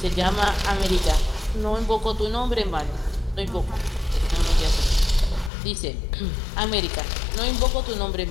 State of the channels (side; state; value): right; drops out; at 5.5 s